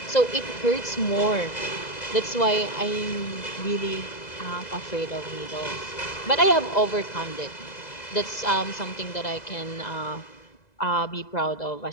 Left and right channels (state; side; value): late; right; 2.0 ms